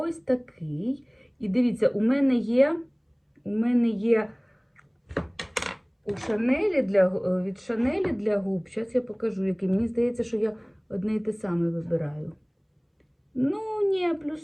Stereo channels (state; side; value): identical; both; correlation 1.00